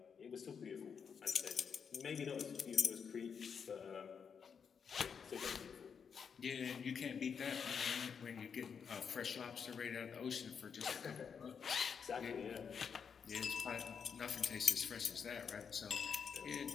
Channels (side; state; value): right; quieter; 6.7 dB